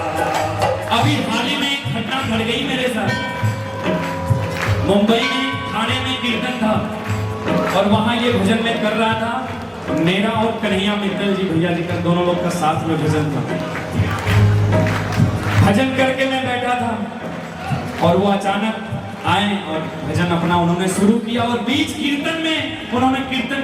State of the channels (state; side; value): identical; both; correlation 1.00